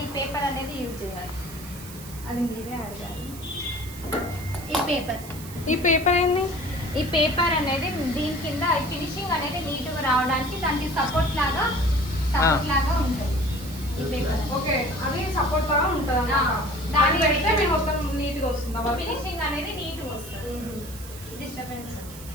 ఈ పేపర్ అనేది యూజ్ చేయాలి. అది మీరే అడగాలి. ఈ పేపర్ ఏంది? ఈ పేపర్ అనేది దీని కింద ఫినిషింగ్ అనేది నీట్గా రావడానికి దానికి సపోర్ట్ లాగా ఉంటుంది ఈ పేపర్. ఓకే, అది సపోర్ట్ లాగా ఉంటుంది అన్నమాట. దాన్ని పెడితే మేము మొత్తం నీట్గా వస్తుంది. ఫినిషింగ్ అనేది నీట్గా వస్తుంది. డిస్టర్బెన్స్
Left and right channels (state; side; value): noise; right; hiss, 15 dB below the sound